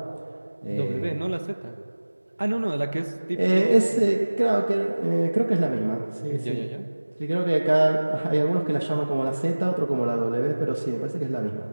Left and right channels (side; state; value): both; inverted; correlation -1.00